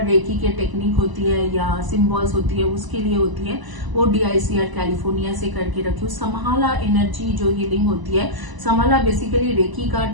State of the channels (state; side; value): late; left; 1.0 ms